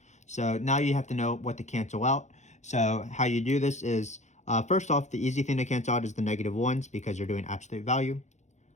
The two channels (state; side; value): late; right; 0.34 ms